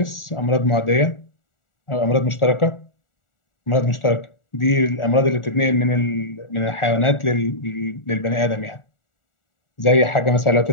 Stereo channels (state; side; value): late; right; 1.4 ms